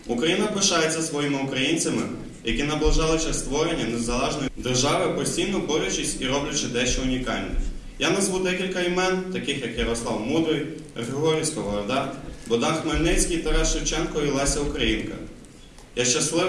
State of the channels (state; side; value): identical; both; correlation 1.00